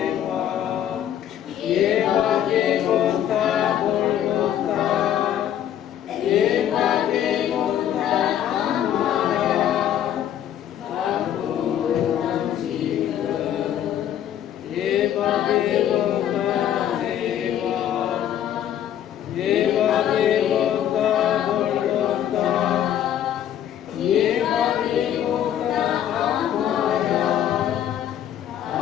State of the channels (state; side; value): quieter; right; 10.5 dB